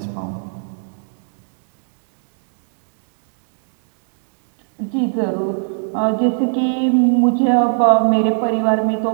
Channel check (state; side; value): silent; left; digital silence